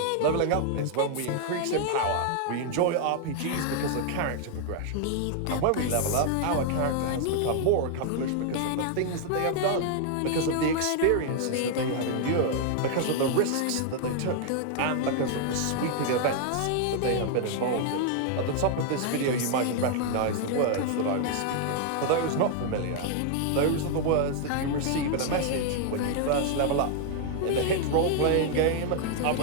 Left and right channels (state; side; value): different; both; correlation 0.00